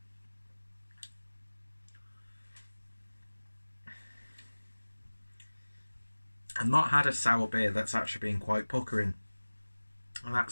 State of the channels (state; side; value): inverted; both; correlation -1.00